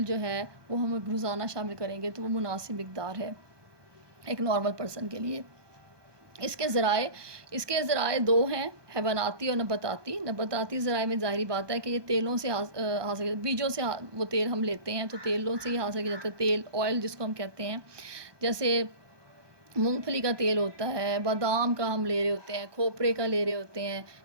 جو ہے وہ ہم روزانہ شامل کریں گے تو وہ مناسب مقدار ہے ایک نارمل پرسن کے لیے. اس کے ذرائع دو ہیں، حیواناتی اور نباتاتی. نباتاتی ذرائع میں ظاہری بات ہے کہ یہ تیلوں سے حاصل، بیجوں سے وہ تیل ہم لیتے ہیں، تو تیلوں سے ہی حاصل کیا جاتا ہے تیل، آئل جس کو ہم کہتے ہیں. جیسے مونگ پھلی کا تیل ہوتا ہے، بادام کا ہم لے رہے ہوتے ہیں، کھوپرے کا لے رہے ہوتے ہیں،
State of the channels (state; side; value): late; left; 1.2 ms